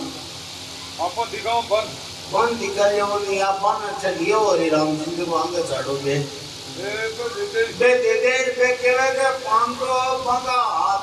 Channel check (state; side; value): identical; both; correlation 1.00